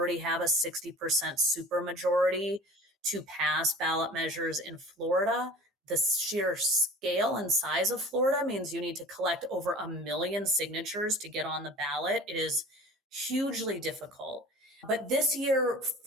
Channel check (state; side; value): normal; both; correlation 0.42